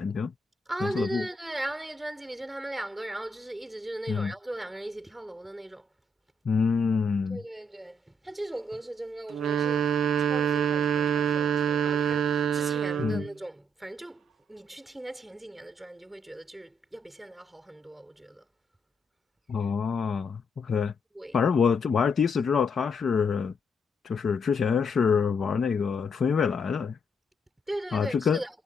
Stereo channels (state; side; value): normal; both; correlation 0.74